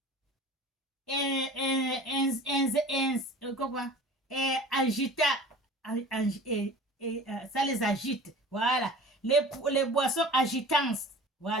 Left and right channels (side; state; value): both; normal; correlation 0.41